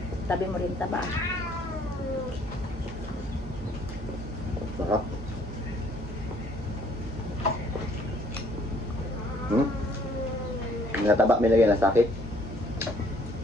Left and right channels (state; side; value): normal; both; correlation 0.62